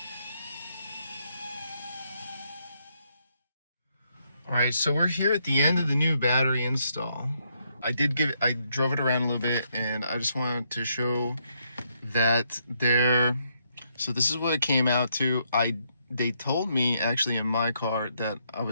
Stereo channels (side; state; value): both; inverted; correlation -0.76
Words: All right, so we're here at the end of the new battery install. I drove it around a little bit, and I just wanted to show that so this is what it came out to. They told me actually in my car that I